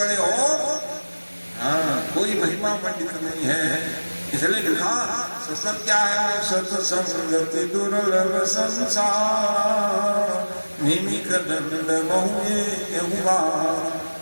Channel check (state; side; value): inverted; both; correlation -1.00